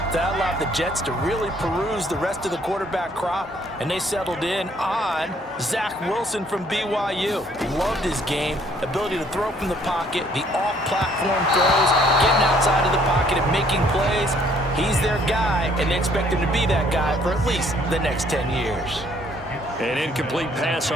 That allowed the Jets to really peruse the rest of the quarterback crop, and they settled in on Zach Wilson from BYU. Loved his game, ability to throw from the pocket, the off-platform throws, getting outside of the pocket and making plays. He's their guy, and they expect him to be that guy for at least the next 10 years. An incomplete pass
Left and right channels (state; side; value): normal; both; correlation 0.62